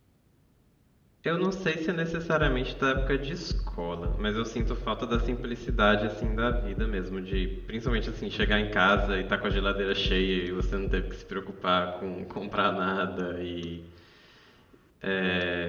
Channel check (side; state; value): both; identical; correlation 1.00